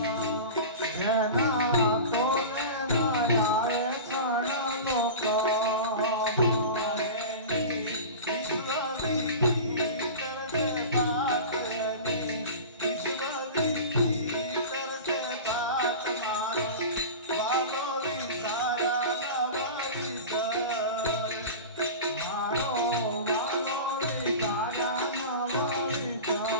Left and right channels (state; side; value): inverted; both; correlation -0.31